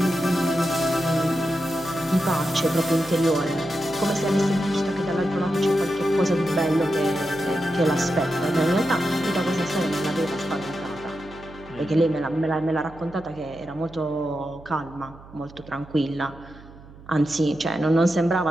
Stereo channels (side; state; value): right; noise; hum, 20 dB below the sound